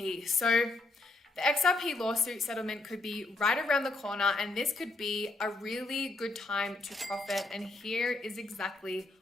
So the XRP lawsuit settlement could be right around the corner, and this could be a really good time to profit, and here is exactly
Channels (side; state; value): right; quieter; 3.1 dB